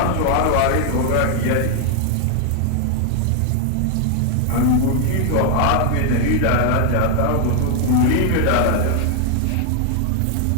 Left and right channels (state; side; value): different; both; correlation 0.00